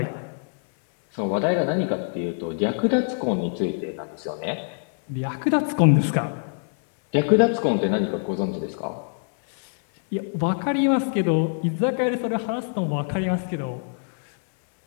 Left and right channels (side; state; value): right; silent; digital silence